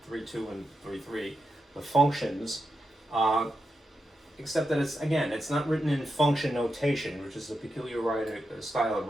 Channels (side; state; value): both; normal; correlation 0.87